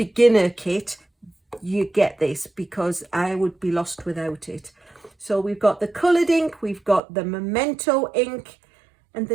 kit, you get this, because I would be lost without it. So we've got the coloured ink, we've got the Memento ink, and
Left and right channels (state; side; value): drops out; left; at 7.0 s